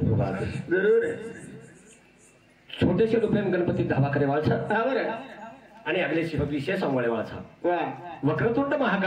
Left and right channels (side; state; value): both; identical; correlation 1.00